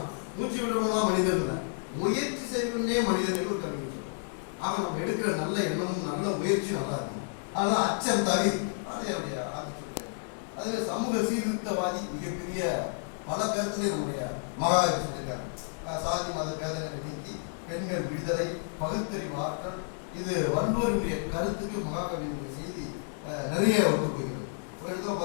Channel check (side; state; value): right; silent; digital silence